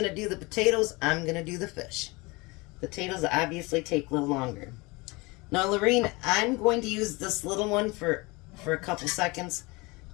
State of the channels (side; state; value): right; quieter; 25.0 dB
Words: to do the potatoes, I'm going to do the fish. Potatoes obviously take a little longer. Now, Lorene, I'm going to use this little one for a couple seconds,